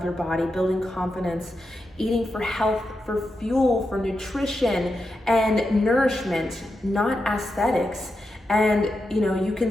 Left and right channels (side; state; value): both; normal; correlation 0.87